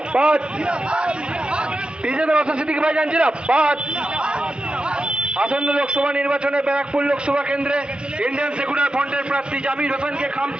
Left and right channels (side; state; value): left; late; 0.055 ms